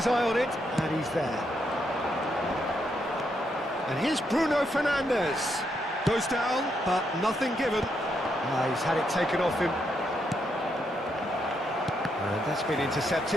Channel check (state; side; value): normal; both; correlation 0.79